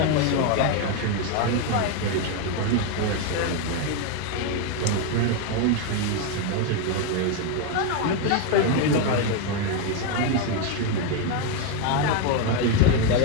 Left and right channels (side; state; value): both; different; correlation 0.01